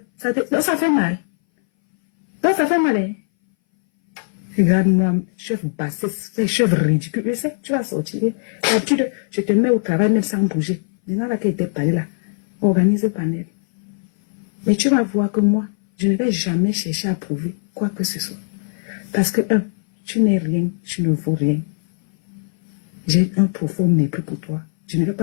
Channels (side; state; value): right; silent; 61 dB below the other